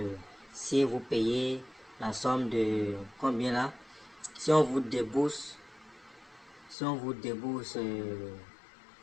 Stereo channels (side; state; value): right; drops out; at 6.8 s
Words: si vous payez la somme de combien là, si on vous débourse, si on vous débourse